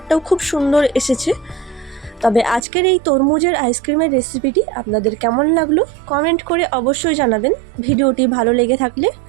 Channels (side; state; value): left; drops out; at 2.6 s